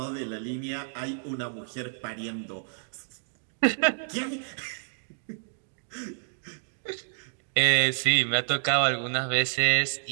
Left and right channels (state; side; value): silent; left; digital silence